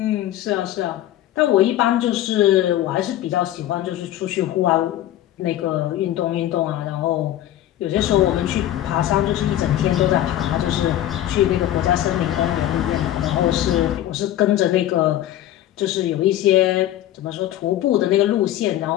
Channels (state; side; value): quieter; right; 13.0 dB